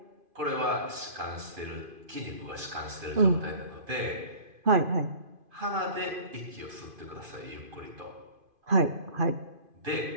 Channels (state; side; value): late; left; 2.5 ms